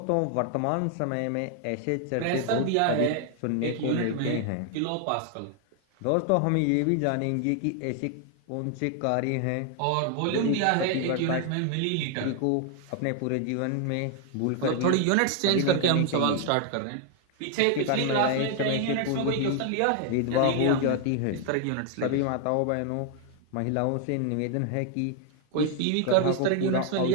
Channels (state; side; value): different; both; correlation 0.00